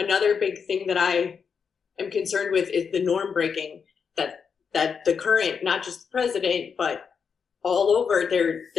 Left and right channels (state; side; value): quieter; right; 6.3 dB